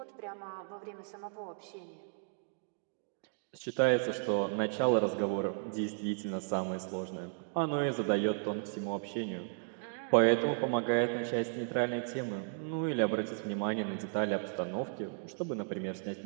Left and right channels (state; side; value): silent; left; digital silence